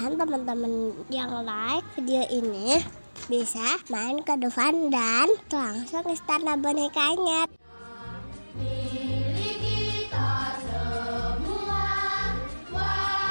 teman-teman yang like video ini bisa main ke depan dan langsung istana bonekanya.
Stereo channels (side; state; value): both; inverted; correlation -1.00